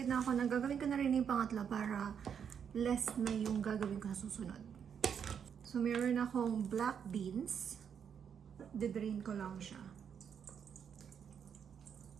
na ako na gagawin ko na rin yung pangatlo para less na yung gagawin ko sa susunod. So, meron akong black beans. Didrain ko lang siya.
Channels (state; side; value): quieter; left; 7.6 dB